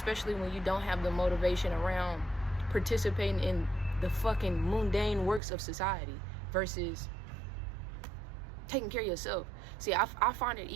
when you don't have the motivation around participating in the fucking mundane works of society versus taking care of yourself. See, I find it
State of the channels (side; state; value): left; drops out; at 5.4 s